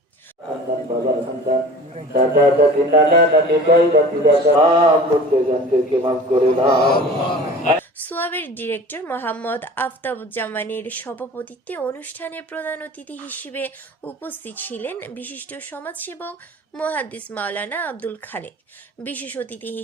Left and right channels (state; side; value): normal; both; correlation 0.41